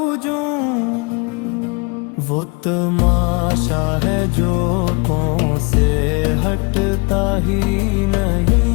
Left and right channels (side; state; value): right; quieter; 30.9 dB